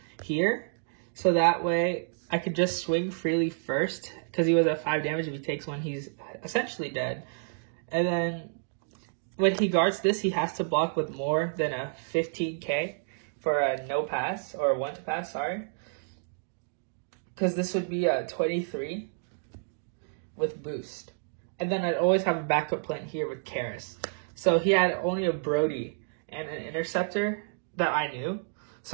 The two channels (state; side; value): silent; left; digital silence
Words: here, so that way I could just swing freely first, because he was at 5 damage. If he takes one, he's essentially dead. And then when he guards this, he has to block with more than a 15k for a no pass, or a 1 to pass, sorry. Because this would be a 23 with boost. And then I'd always have a backup plan here with Karis. So he had only a Brody and an Interceptor that I knew.